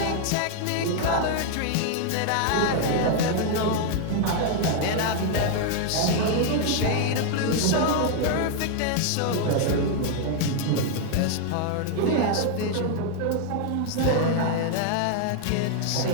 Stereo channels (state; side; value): different; both; correlation 0.00